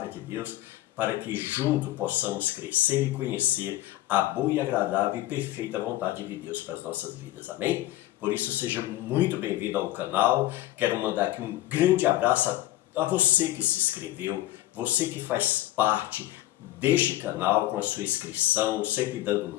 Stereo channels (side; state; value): right; quieter; 15.8 dB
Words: de Deus, para que juntos possamos crescer e conhecer a boa e agradável e perfeita vontade de Deus para as nossas vidas. Amém? Por isso, seja muito bem-vindo ao canal. Quero mandar aqui um grande abraço a você que se inscreveu, você que faz parte deste canal com a sua inscrição, sempre dando